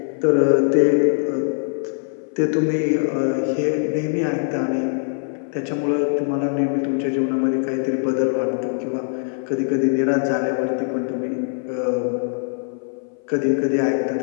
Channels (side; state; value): right; silent; 58 dB below the other